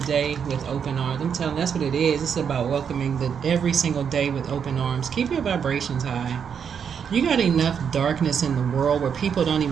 you, that's what it is. It's about welcoming every single day with open arms. Keep your vibrations high. You got enough darkness in the world where people don't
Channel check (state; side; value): quieter; left; 7.3 dB